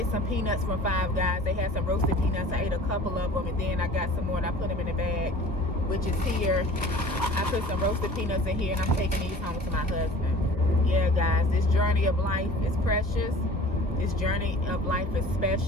some peanuts from Five Guys. They had some roasted peanuts. I ate a couple of them, and then I got some more, and I put them in the bag, which is here. I put some roasted peanuts in here, and I'm taking these home to my husband. Yeah, guys, this journey of life is precious. This journey of life is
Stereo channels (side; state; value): both; normal; correlation 0.45